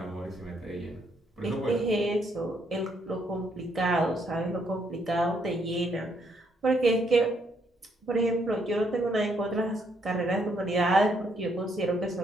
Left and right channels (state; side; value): normal; both; correlation 0.72